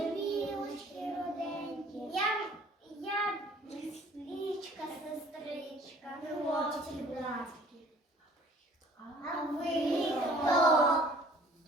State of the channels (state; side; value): normal; both; correlation 0.53